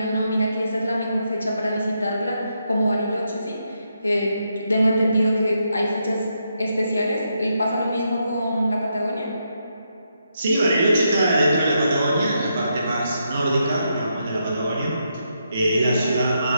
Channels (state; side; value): inverted; both; correlation -0.81